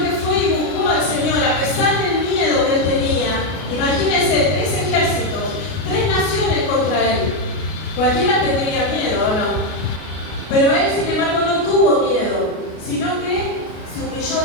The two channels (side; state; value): right; late; 33 ms